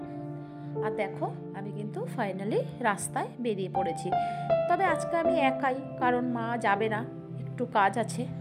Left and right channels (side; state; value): both; identical; correlation 1.00